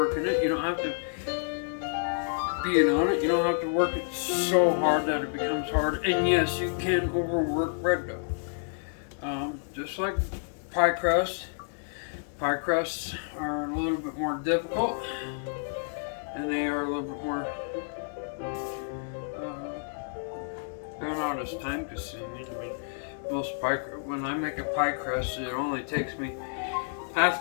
it. You don't have to being on it. You don't have to work it so hard that it becomes hard. And yes, you can overwork bread dough. Just like pie crust. Pie crusts are a little bit more difficult, and they are a little bit more they're not as time consuming. I mean, when I make a pie crust, it only takes me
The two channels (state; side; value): silent; right; digital silence